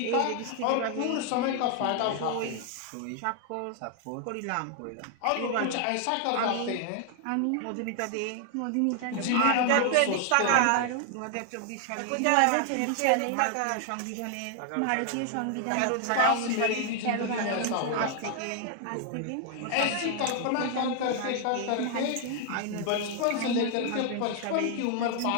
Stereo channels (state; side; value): different; both; correlation 0.00